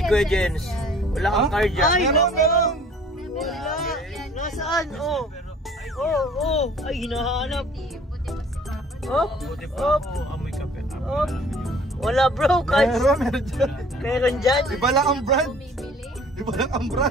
kuya Jens, wala kang carjack. Ay, Meron. wala. Nasaan? Oh. Ay, hinahanap. Op. Buti pa ako, amoy kape. Op. Wala bro, kahit Meron dyan. meron dyan. Iba lang ang brand. Iba lang ang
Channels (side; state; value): both; normal; correlation 0.52